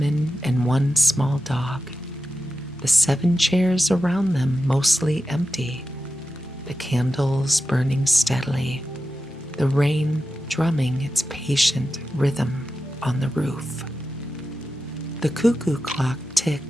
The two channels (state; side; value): normal; both; correlation 0.92